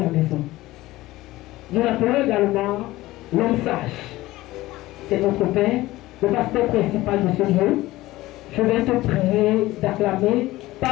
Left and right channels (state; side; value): quieter; right; 17.6 dB